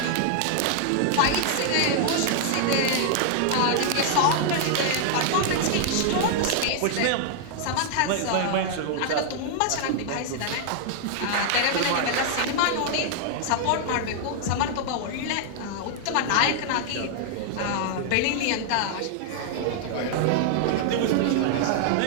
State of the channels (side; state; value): both; different; correlation 0.00